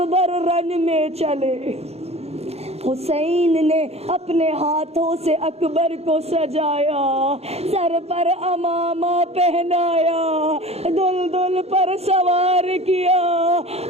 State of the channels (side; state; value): left; late; 0.30 ms